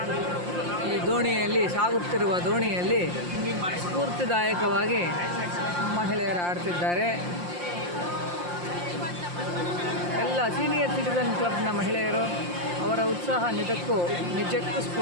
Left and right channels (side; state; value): left; late; 5.7 ms